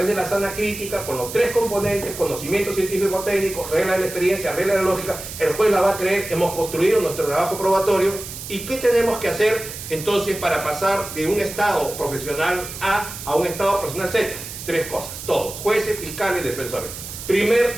de la sana crítica con los 3 componentes: conocimiento científico-técnico, regla de la experiencia, regla de la lógica. El juez la va a creer, hemos construido nuestro trabajo probatorio. ¿Y qué tenemos que hacer entonces para pasar de un estado profesional A a un estado profesional Z? 3 cosas, todos, jueces, fiscales, defensores.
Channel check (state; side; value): noise; right; hiss, 10 dB below the sound